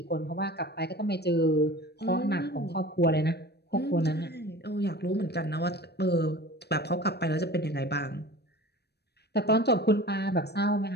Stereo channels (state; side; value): late; right; 0.48 ms